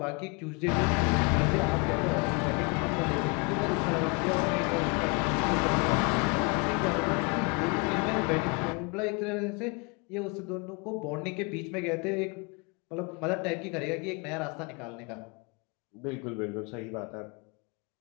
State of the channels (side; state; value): right; quieter; 31.4 dB